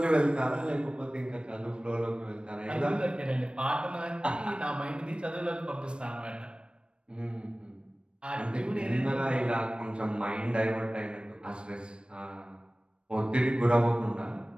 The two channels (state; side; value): late; left; 0.056 ms